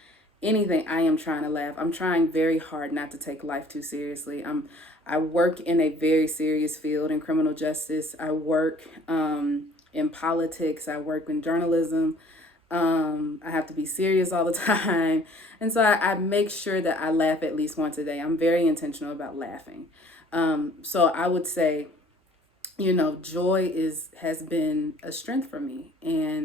anything, I am trying to laugh. I'm trying very hard not to take life too seriously. I work in a very serious field in criminal justice. I work in politics. I work in journalism. I have to be serious all the time. And so I make sure that I laugh at least once a day. I'm very intentional about laughing. So I would say, joy has been a strength for me.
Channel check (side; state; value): both; normal; correlation 0.54